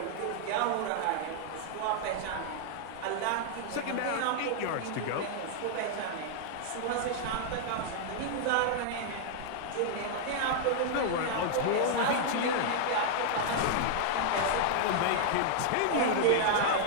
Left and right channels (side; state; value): both; different; correlation -0.01